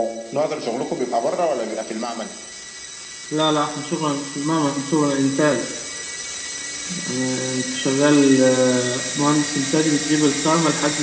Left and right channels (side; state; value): both; identical; correlation 1.00